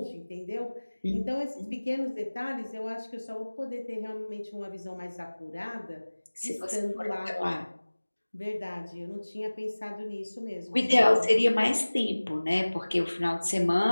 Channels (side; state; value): both; inverted; correlation -1.00